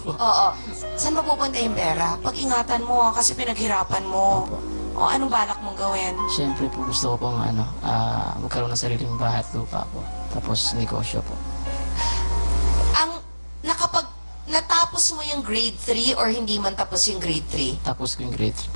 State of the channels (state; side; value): inverted; both; correlation -1.00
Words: Oo. Saan mapupunta yung pera? Pag-ingatan mo kasi pinaghirapan mo. O, anong balak mong gawin? Siyempre po gusto ko pong magkaroon ng sariling bahay at lupa po. Tapos negosyo po. Natapos mo yung grade 3 or hindi man tapos yung grade 3? Tapos ko yung grade 3